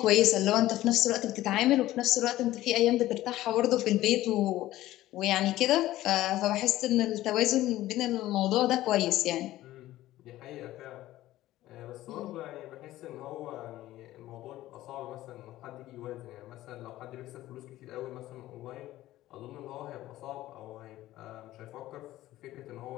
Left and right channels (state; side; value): quieter; right; 15.4 dB